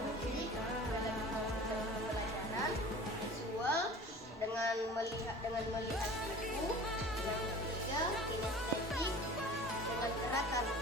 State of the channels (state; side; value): normal; both; correlation 0.41